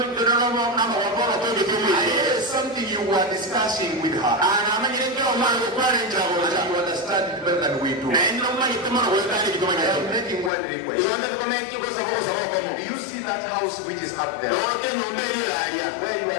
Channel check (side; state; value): right; drops out; at 10.5 s